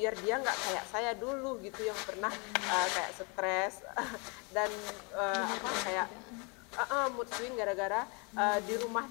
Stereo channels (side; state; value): right; quieter; 32.6 dB